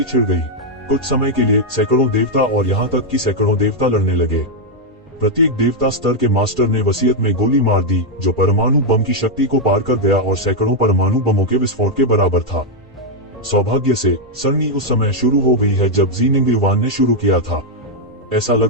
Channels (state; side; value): normal; both; correlation -0.01